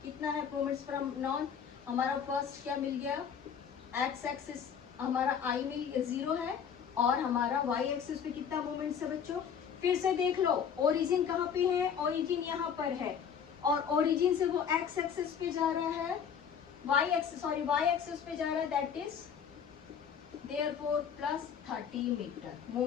कितना है मूवमेंट्स फ्रॉम नॉर्थ, हमारा फर्स्ट क्या मिल गया, एक्स एक्सिस हमारा आई मिल 0 है, और हमारा वाई एक्सिस पे कितना मूवमेंट्स है बच्चों। फिर से देख लो, ओरिजिन कहाँ पे है, ओरिजिन यहाँ पर है, और ओरिजिन से वो एक्स एक्सिस पे जा रहा है, वाई एक्सिस पे जा रहा है, that is therefore plus 30 metre,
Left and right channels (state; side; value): quieter; right; 7.5 dB